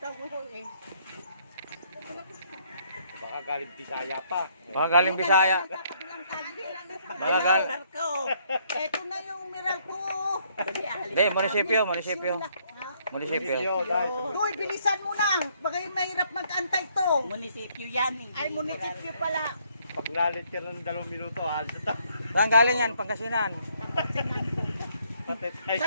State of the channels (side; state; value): both; inverted; correlation -0.68